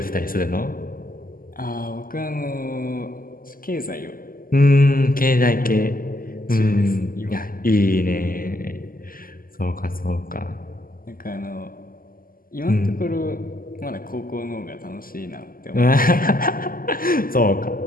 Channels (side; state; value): right; late; 0.42 ms